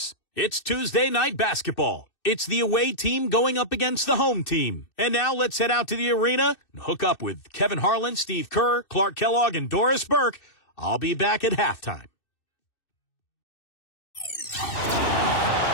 It's Tuesday night basketball. It's the away team going up against the home team. And now let's head out to the arena and hook up with Kevin Harlan, Steve Kerr, Clark Kellogg, and Doris Burke. I'll be back at halftime.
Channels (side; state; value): right; late; 2.6 ms